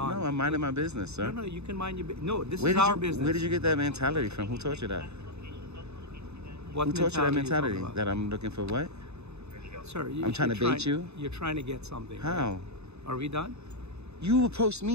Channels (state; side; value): late; left; 0.80 ms